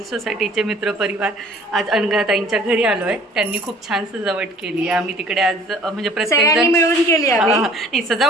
सोसायटीचे मित्रपरिवार आज अनघाताईंच्या घरी आलो आहे। त्यांनी खूप छान सजावट केली आहे। आम्ही तिकडे आज म्हणजे प्रत्येकजण मिळून केली आहे। नाही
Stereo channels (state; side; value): normal; both; correlation 0.52